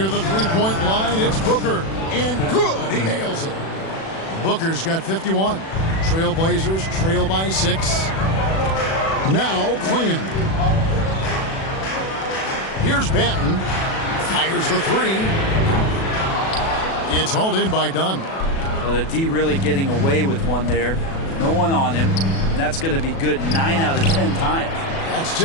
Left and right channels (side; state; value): right; late; 37 ms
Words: the three-point line, it's Booker. And good! He nails it. Booker's got 51. Trailblazers trail by 6. Now Clingan. Here's Banton. Fires the three. It's hauled in by Dunn. Well, the D really getting away with one there. No one on him. That's going to be good 9 out of 10 times. That's